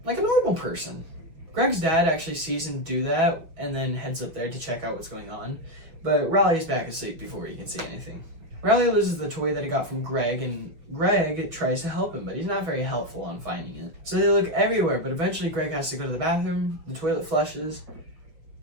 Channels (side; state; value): left; late; 6.0 ms